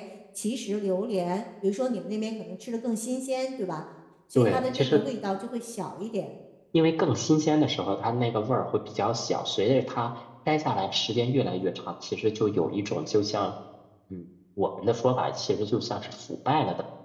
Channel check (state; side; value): identical; both; correlation 1.00